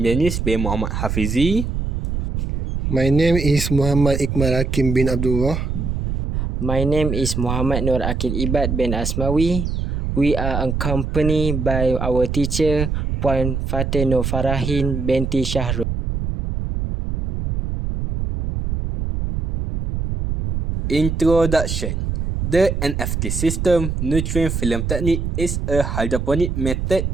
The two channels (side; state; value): right; noise; rumble, 2 dB below the sound